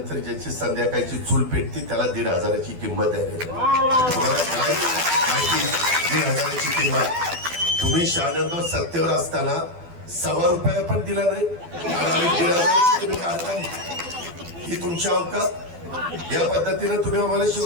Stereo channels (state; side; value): late; left; 12 ms